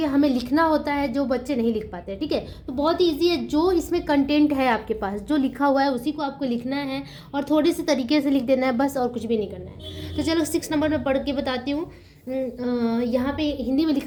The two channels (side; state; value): both; identical; correlation 1.00